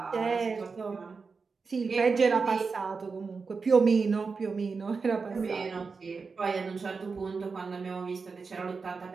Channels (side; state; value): left; quieter; 4.8 dB